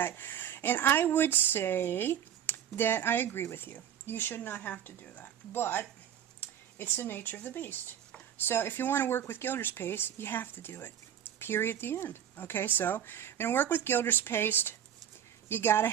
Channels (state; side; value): quieter; left; 9.7 dB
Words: And I would say that I agree with you. You should not have to do that. But it's the nature of the beast. So if you want to work with Gilders Paste, you have to do it. Period at the end. Okay, so you're going to work with Gilders Paste. You got to